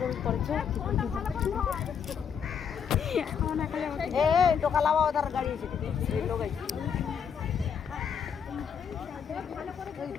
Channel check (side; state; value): right; quieter; 7.3 dB